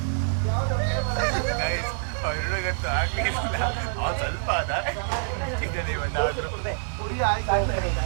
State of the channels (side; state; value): left; silent; digital silence